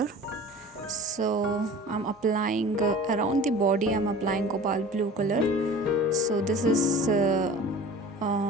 So I'm applying around the body, I'm applying cobalt blue color. So this is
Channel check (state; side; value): normal; both; correlation 0.41